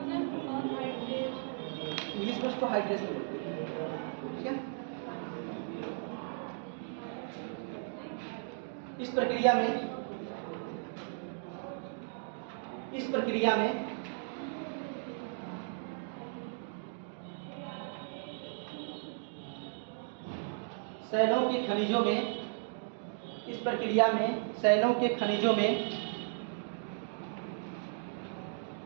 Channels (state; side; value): silent; left; digital silence